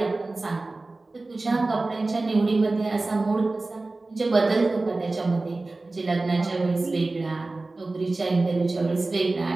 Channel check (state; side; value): quieter; left; 3.2 dB